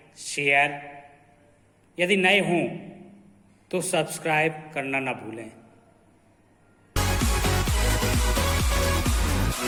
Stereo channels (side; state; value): both; identical; correlation 1.00